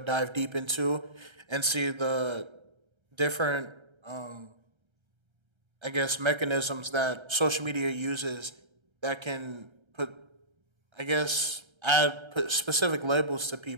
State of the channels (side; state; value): left; late; 1.3 ms